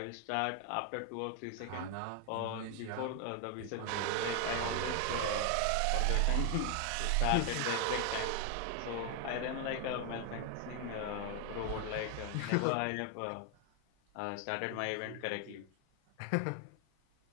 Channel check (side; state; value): both; different; correlation 0.00